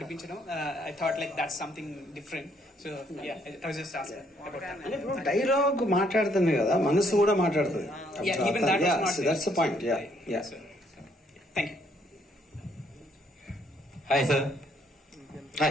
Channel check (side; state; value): both; normal; correlation 0.69